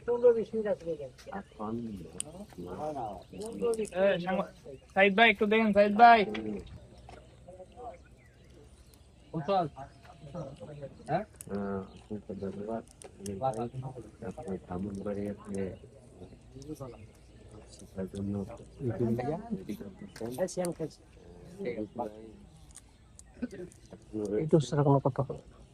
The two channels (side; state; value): both; identical; correlation 1.00